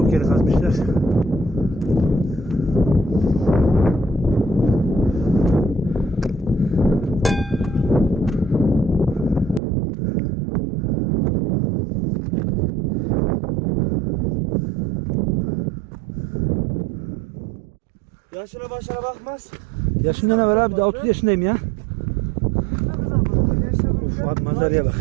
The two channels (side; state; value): left; drops out; at 9.6 s